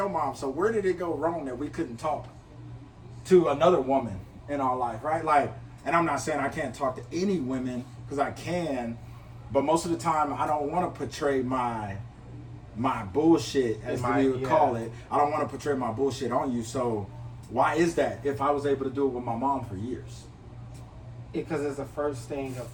mom. So where did it go wrong that we couldn't talk to another woman in our life, right? Like, and I'm not saying I can't talk to any women, because I can, but most of the time I don't want to portray my bullshit, as we would call it. I don't want to portray my bullshit on you. So why is that if I was able to do it with my mom for years? Because it's the first thing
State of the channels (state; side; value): identical; both; correlation 1.00